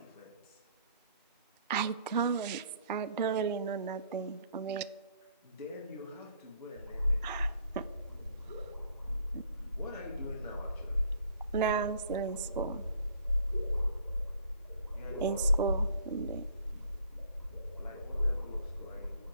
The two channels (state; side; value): inverted; both; correlation -0.60